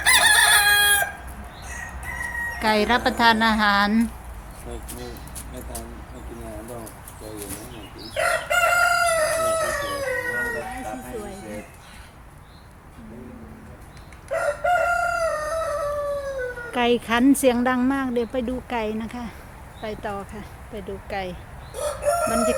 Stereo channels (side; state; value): both; identical; correlation 1.00